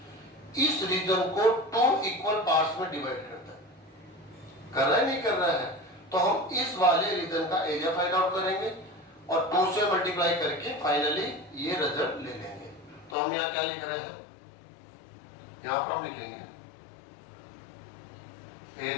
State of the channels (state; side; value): drops out; right; at 13.2 s